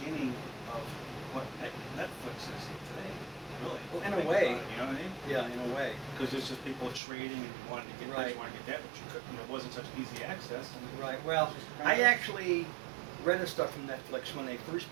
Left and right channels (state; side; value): drops out; left; at 7.0 s